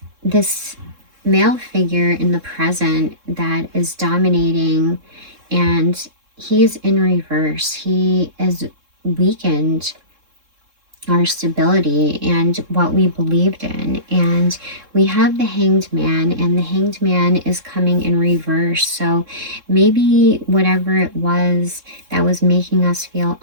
this male figure in the present that is dominating, and he is in reverse. He is weakened our stability and what we believed in. And we have the Hanged Man, and the Hanged Man is coming in reverse. So maybe whatever it was that was making us feel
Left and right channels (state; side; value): late; left; 3.7 ms